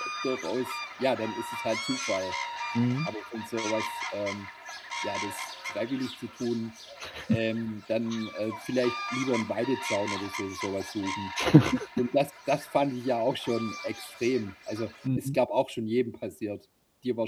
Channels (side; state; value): both; identical; correlation 1.00